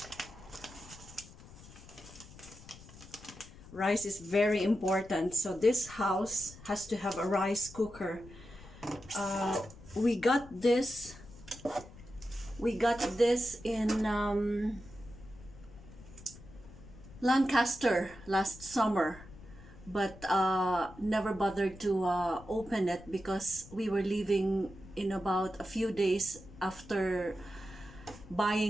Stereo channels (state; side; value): noise; left; rumble, 18 dB below the sound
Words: Rice is very important, so this house has to have a rice cooker. We got this in Lancaster last summer, but never bothered to open it because we were leaving in about a few days after